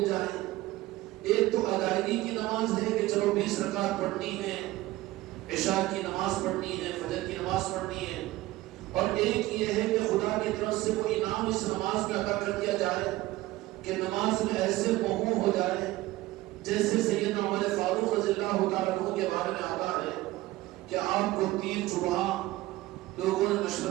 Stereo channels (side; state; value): left; quieter; 17.6 dB